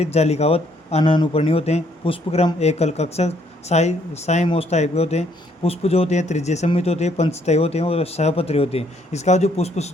जालिकावत अनानुपर्णी होते हैं। पुष्पक्रम एकल कक्षक साइमोस टाइप के होते हैं। पुष्प जो होते हैं त्रिज्य सम्मित होते हैं, पंचतय होते हैं और सहपत्री होते हैं। इसका जो पुष्प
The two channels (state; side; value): normal; both; correlation 0.67